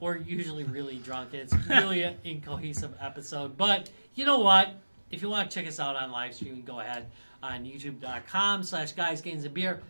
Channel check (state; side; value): inverted; both; correlation -1.00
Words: usually really drunk. And it's really an incohesive episode. But you know what? If you want to check us out on live streaming, go ahead on youtube.com/guysgamesandbeer.